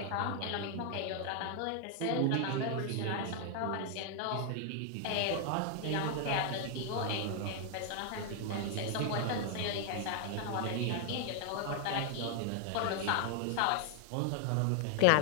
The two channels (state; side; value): different; both; correlation 0.00